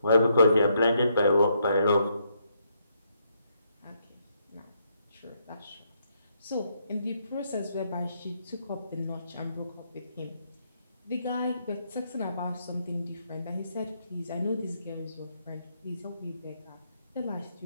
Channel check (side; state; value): both; inverted; correlation -0.75